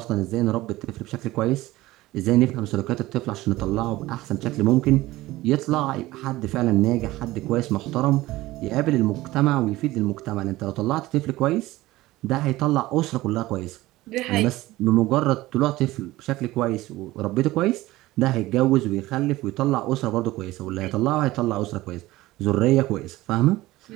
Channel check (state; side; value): quieter; left; 17.8 dB